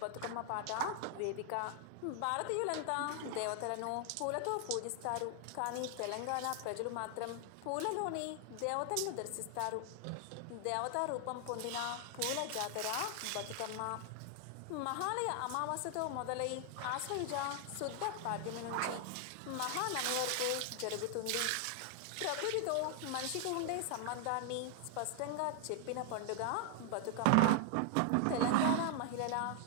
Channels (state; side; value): different; both; correlation 0.00